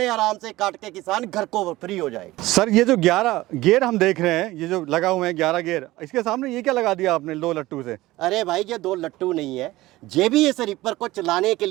आराम से काट के किसान घर को फ्री हो जाएगा। सर ये जो 11 गियर हम देख रहे हैं, ये जो लगा हुए हैं 11 गियर, इसके सामने ये क्या लगा दिया आपने 2 लट्टू से? अरे भाई, ये 2 लट्टू नहीं है, ये भी इस रिपर को चलाने के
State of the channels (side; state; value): left; quieter; 18.0 dB